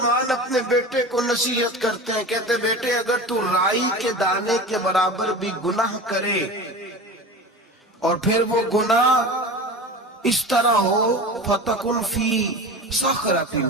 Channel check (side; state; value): both; normal; correlation 0.32